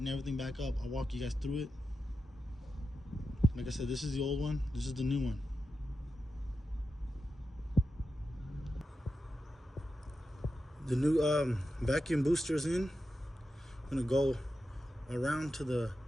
everything back up. I'll walk you guys through it. Like I said, this is the old one, this is the new one. The new vacuum booster's in. I'm gonna go around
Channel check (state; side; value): normal; both; correlation 0.90